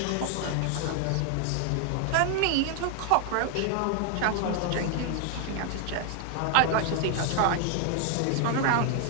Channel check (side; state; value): both; different; correlation 0.00